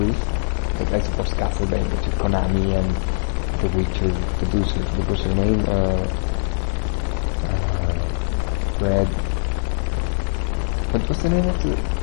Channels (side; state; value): right; silent; digital silence